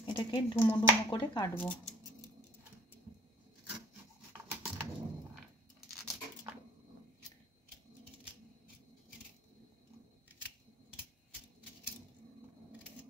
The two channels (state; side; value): normal; both; correlation 0.52